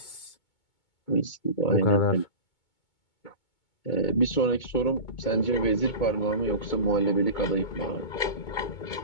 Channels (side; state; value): right; late; 2.2 ms